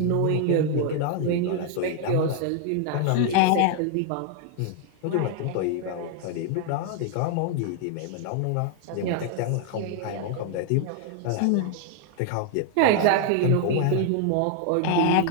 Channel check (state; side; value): different; both; correlation 0.00